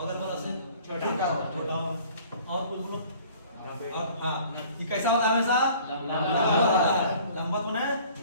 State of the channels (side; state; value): both; inverted; correlation -0.51